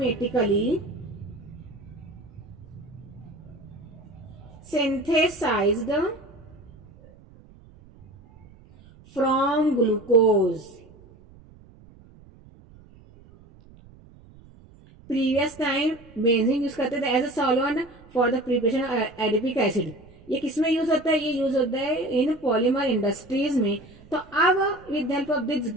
synthesised from glucose. Previous time benzene use करते थे as a solvent for the preparation of adipic acid. ये किसमें यूज होता है? ये यूज होता है इन पॉलीमर इंडस्ट्रीज में। तो अब with help of this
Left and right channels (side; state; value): right; noise; rumble, 23 dB below the sound